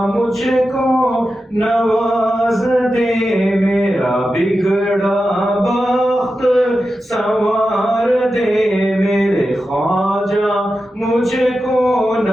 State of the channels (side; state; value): both; normal; correlation 0.91